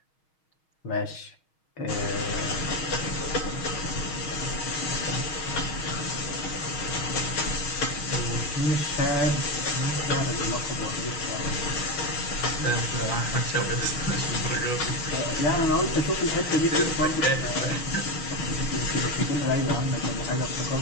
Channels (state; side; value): late; right; 6.3 ms